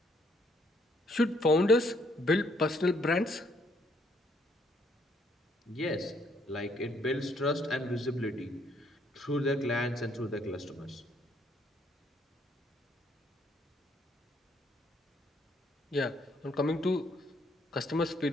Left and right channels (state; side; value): normal; both; correlation 0.69